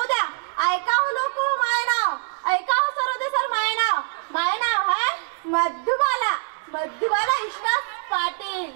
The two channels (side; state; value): left; silent; 57 dB below the other